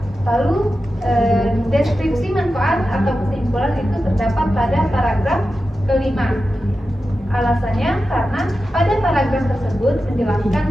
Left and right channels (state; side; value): normal; both; correlation 0.92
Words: Lalu deskripsi manfaat atau kesimpulan itu terdapat pada paragraf kelima. Alasannya karena pada paragraf tersebut menjelaskan